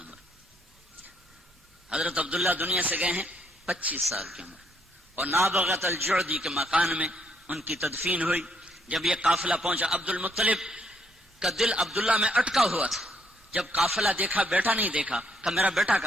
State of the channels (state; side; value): normal; both; correlation 0.71